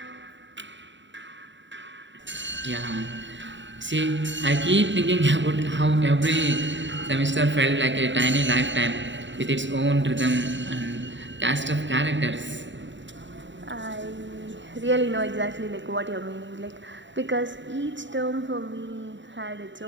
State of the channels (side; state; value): left; late; 0.54 ms